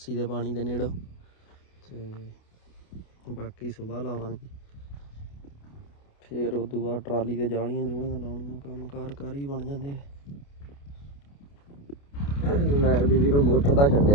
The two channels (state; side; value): late; right; 28 ms